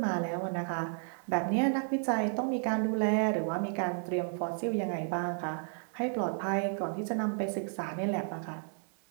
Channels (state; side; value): silent; left; 56 dB below the other